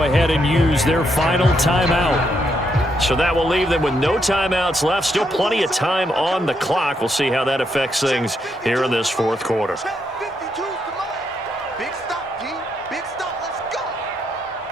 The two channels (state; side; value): normal; both; correlation 0.78